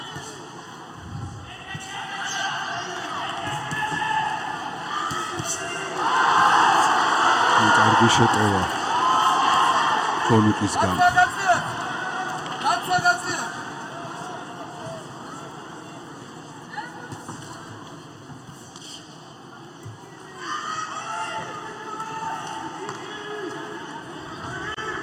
კარგი შეტევა კონუკისგან.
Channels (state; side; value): identical; both; correlation 1.00